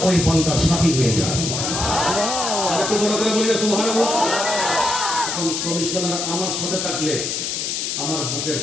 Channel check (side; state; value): left; noise; hiss, 2 dB below the sound